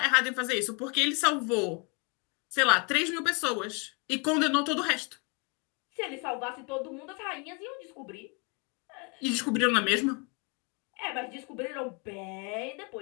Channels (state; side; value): quieter; right; 33.3 dB